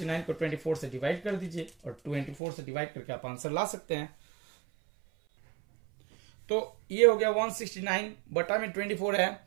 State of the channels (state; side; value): drops out; left; at 2.4 s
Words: को 24 से डिवाइड कर दीजिए और 24 से डिवाइड करके आप आंसर ला सकते हैं। तो ये हो गया 169 बटा में 24 है।